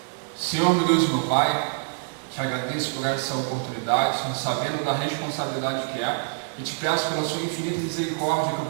Senhor, meu Deus e meu Pai, te agradeço por essa oportunidade, sabendo da responsabilidade que é, e te peço pela sua infinita misericórdia que eu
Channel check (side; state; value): left; silent; digital silence